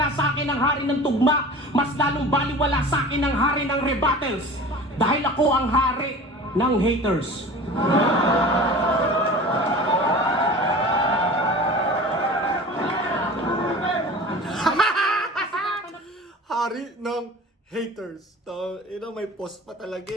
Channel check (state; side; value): normal; both; correlation 0.38